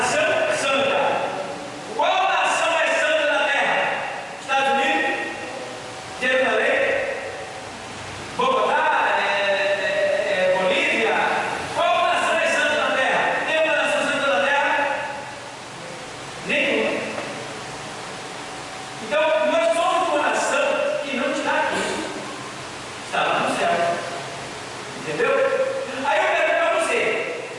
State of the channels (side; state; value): both; identical; correlation 1.00